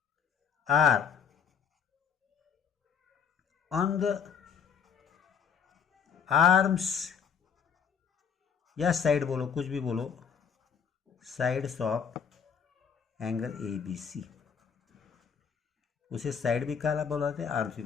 are on the arms या साइड बोलो, कुछ भी बोलो, sides of angle A B C. उसे साइड भी कहा बोला जाता है, आर्म्स भी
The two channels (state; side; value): quieter; right; 7.1 dB